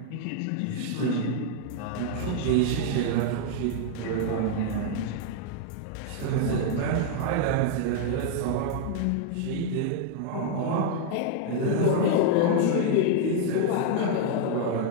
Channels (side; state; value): both; different; correlation 0.00